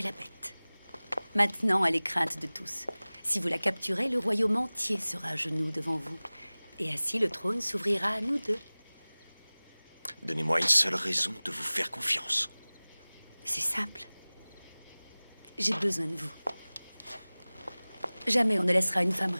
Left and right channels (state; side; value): inverted; both; correlation -1.00